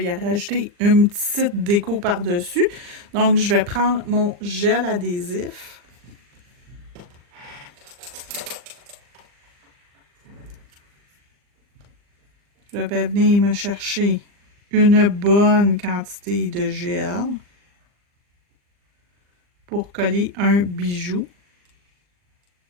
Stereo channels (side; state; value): left; late; 39 ms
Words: rajouter une petite déco par-dessus. Donc, je vais prendre mon gel adhésif. Je vais venir me chercher une bonne quantité de gel pour coller un bijou.